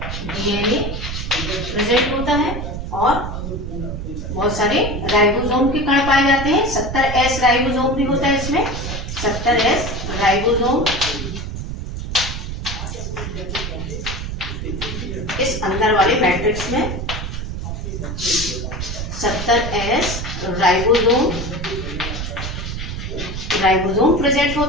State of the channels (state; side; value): noise; right; rumble, 5 dB below the sound